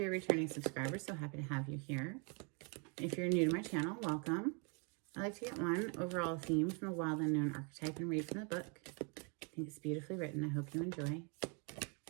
a returning subscriber, so happy to have you here. If you're new to my channel, welcome. I like to get one overall theme from the Wild Unknown archetype and read from the book. I think it's beautifully written. I hope you enjoy.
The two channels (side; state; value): left; quieter; 35.1 dB